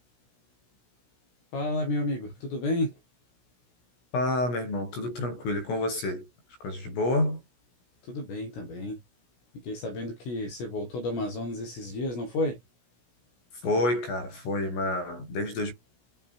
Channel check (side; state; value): right; late; 16 ms